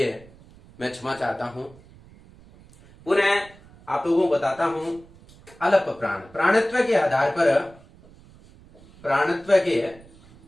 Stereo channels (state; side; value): noise; right; rumble, 24 dB below the sound